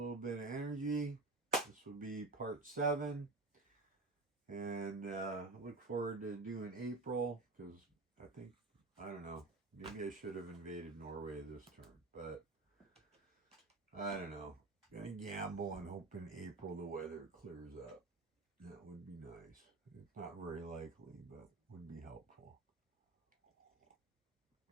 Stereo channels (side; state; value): left; quieter; 3.3 dB